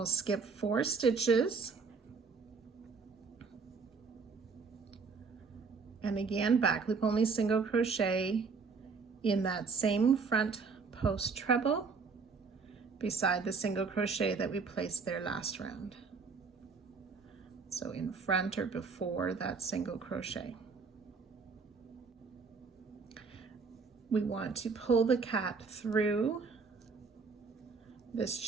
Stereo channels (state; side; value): quieter; left; 4.9 dB